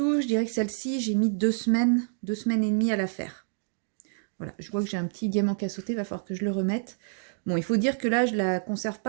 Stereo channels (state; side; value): silent; left; digital silence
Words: je dirais que celle-ci, j'ai mis 2 semaines et demie à la faire. Voilà, je vois que j'ai un petit diamant qui a sauté, il va falloir que je le remette. Bon, il faut dire que là, je la conserve